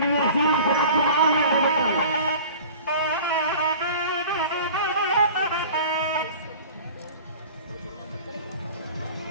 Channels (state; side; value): inverted; both; correlation -0.42